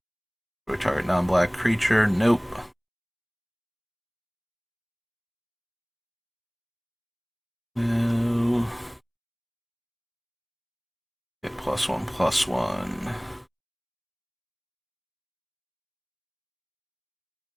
Target non-black creature. Nope. No. Get +1/+1.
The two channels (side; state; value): both; identical; correlation 1.00